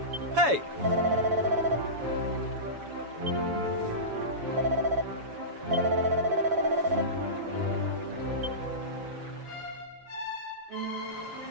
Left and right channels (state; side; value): late; left; 7.1 ms